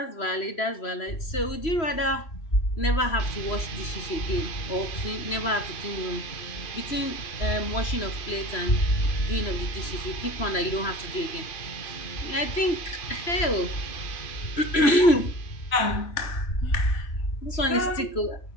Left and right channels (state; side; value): late; right; 3.0 ms